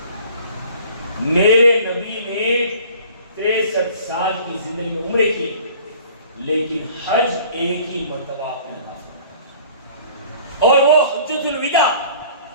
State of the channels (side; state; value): both; inverted; correlation -0.50